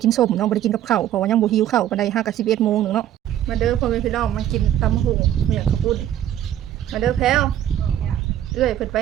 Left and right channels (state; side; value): quieter; left; 11.6 dB